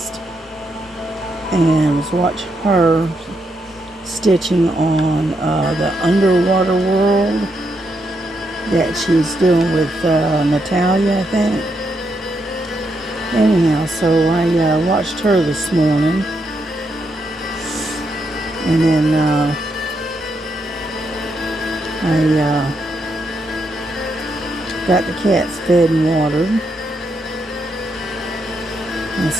and was watching her stitching on the underwater world that she's doing with Natalia, I think. Anyhow, so I watched her this morning, and then I got the cats fed and watered. And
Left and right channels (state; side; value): normal; both; correlation 0.80